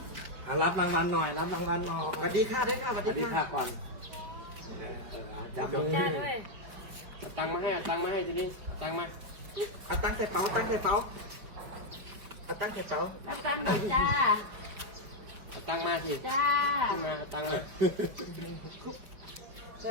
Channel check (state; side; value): late; left; 5.1 ms